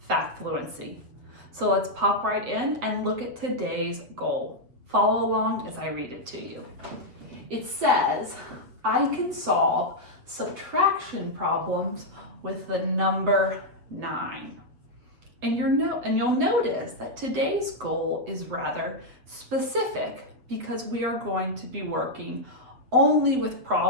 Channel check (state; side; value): late; left; 7.9 ms